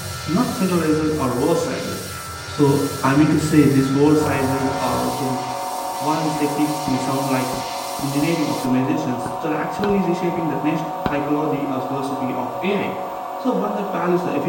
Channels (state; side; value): identical; both; correlation 1.00